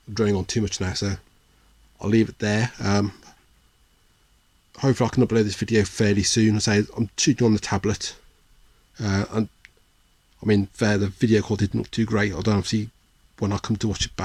drawing on too much now, so I'll leave it there. Hopefully I can upload this video fairly soon. I say I'm shooting on the tablet, and I mean, the video quality didn't look too great. I don't see when I come to watch it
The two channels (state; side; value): identical; both; correlation 1.00